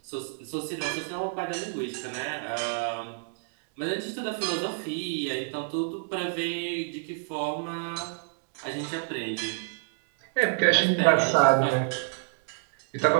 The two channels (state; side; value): silent; left; digital silence